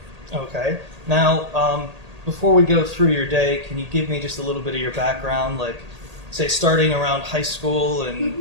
Okay. Now, before we go through your day, can you give me just a little bit of your background, like, say, starting around high school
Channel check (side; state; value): left; late; 1.8 ms